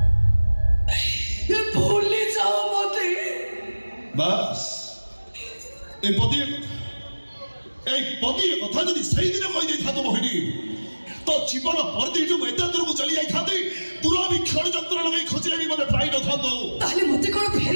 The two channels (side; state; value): both; inverted; correlation -1.00